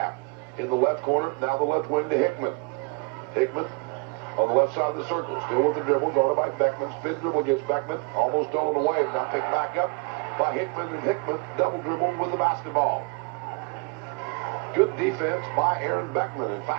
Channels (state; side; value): quieter; left; 31.7 dB